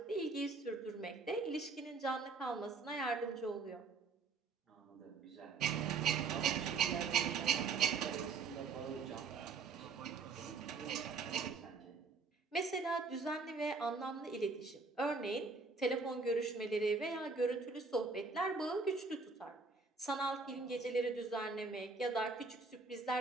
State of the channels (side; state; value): left; quieter; 4.4 dB